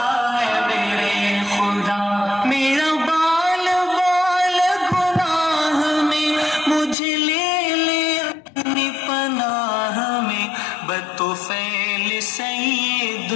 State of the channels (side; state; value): right; drops out; at 7.0 s